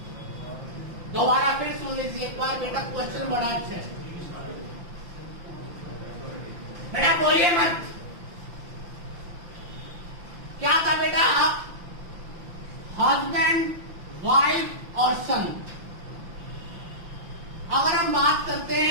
दोबारा फिर सुन लीजिए एक बार। बेटा क्वेश्चन बड़ा अच्छा है बेटा, बोलिए मत। क्या था बेटा? हस्बैंड, वाइफ और सन। अगर हम बात करते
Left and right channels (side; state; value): left; late; 5.9 ms